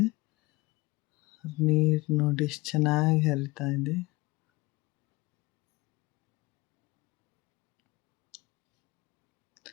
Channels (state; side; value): quieter; right; 22.7 dB